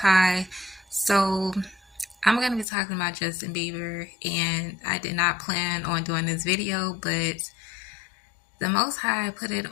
So I'm going to be talking about Justin Bieber, and I did not plan on doing this video, but the Most High put it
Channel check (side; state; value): right; drops out; at 2.7 s